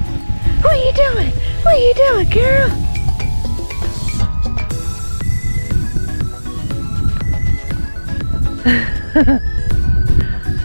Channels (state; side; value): inverted; both; correlation -1.00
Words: are you doing? What are you doing, girl?